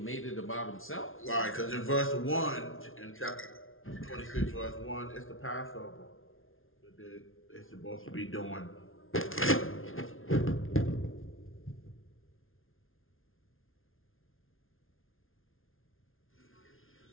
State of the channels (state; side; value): late; right; 0.60 ms